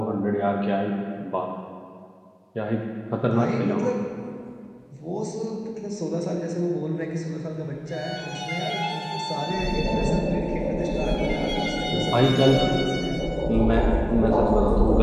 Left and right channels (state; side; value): identical; both; correlation 1.00